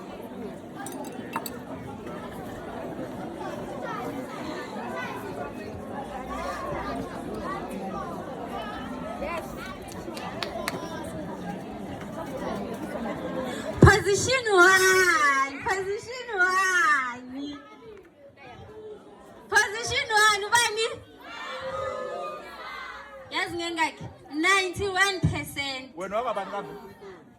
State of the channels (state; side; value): identical; both; correlation 1.00